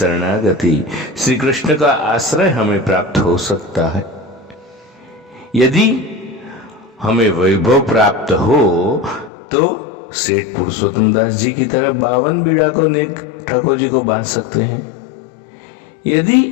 श्री कृष्ण का आश्रय हमें प्राप्त हो सकता है। यदि हमें वैभव प्राप्त हो तो सेठ पुरुषोत्तम दास जी की तरह 52 बीड़ा को नेक ठाकुर जी को बांध सकते हैं।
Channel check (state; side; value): drops out; right; at 9.3 s